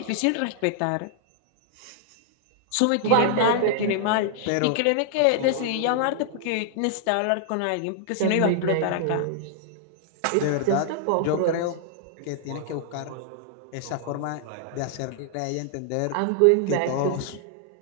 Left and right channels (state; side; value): different; both; correlation -0.01